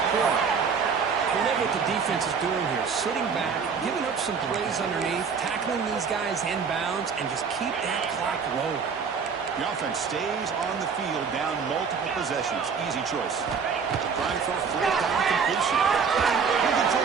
poor. I love what the defense is doing here. Sitting back, giving up some plays underneath, tackling these guys inbounds, and just keep that clock rolling. The offense stays on the field, down multiple possessions. Easy choice. Trying for a fourth down completion. Looking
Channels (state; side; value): quieter; left; 5.9 dB